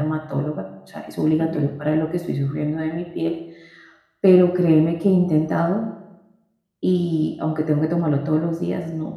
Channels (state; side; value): identical; both; correlation 1.00